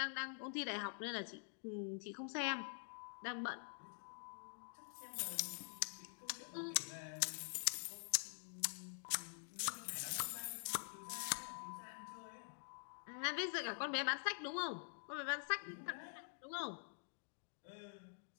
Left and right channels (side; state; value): right; silent; digital silence